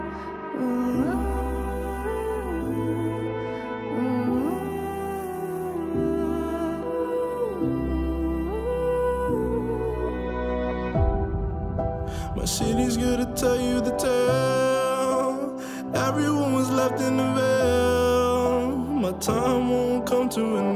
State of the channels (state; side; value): identical; both; correlation 1.00